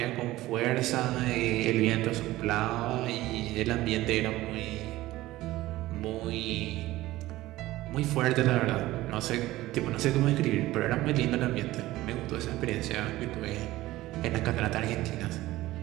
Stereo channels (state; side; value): quieter; left; 17.0 dB